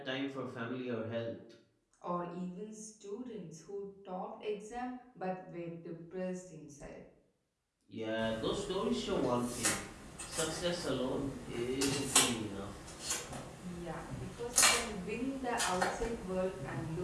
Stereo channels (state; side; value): identical; both; correlation 1.00